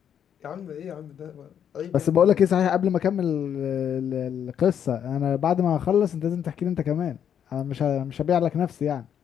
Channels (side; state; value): right; quieter; 8.8 dB